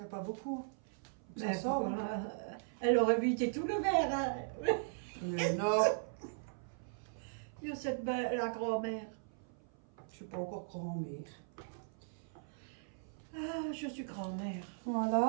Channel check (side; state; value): left; silent; 52 dB below the other